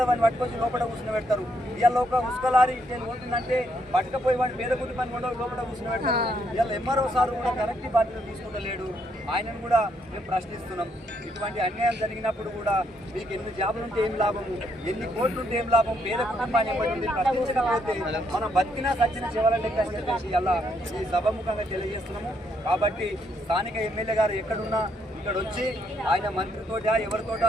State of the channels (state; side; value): normal; both; correlation 0.74